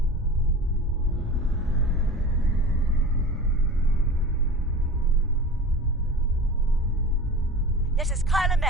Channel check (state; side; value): normal; both; correlation 0.36